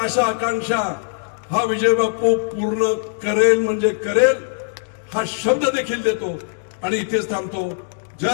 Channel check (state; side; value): silent; right; digital silence